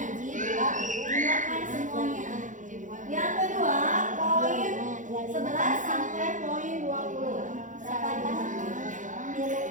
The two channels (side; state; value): left; late; 0.37 ms